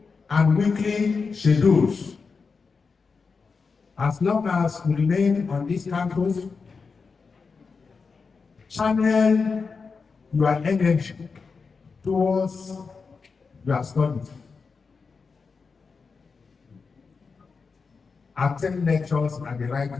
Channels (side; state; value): right; quieter; 4.9 dB